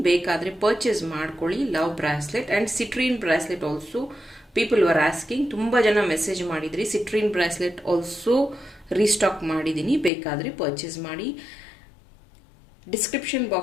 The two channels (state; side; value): drops out; right; at 10.1 s